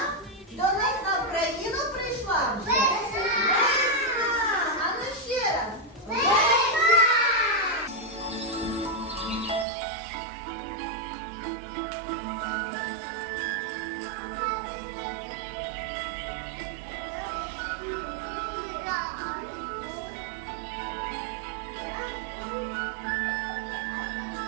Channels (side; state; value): left; drops out; at 9.7 s